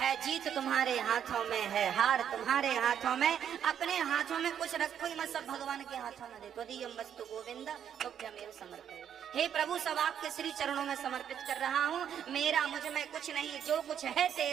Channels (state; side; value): quieter; left; 9.0 dB